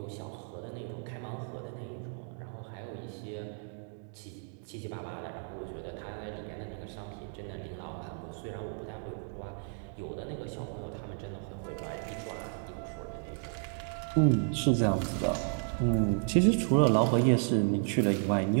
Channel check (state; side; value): silent; left; 56 dB below the other